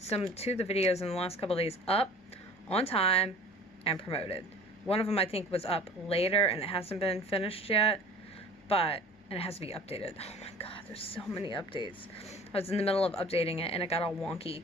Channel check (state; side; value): normal; both; correlation 0.45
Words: to the videos in the last couple of days up on time and promoted. One of them I think was up later and it hasn't been finished yet, and it has to be updated. Oh my god, there's so many updates. I was in the middle of updating it and it got all wonky.